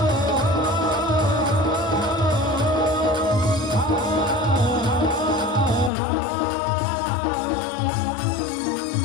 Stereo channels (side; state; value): right; drops out; at 5.9 s